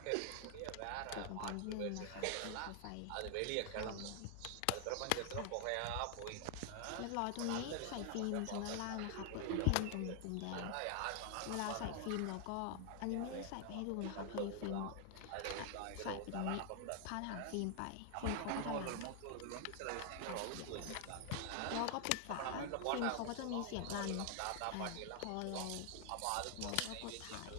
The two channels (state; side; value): different; both; correlation 0.00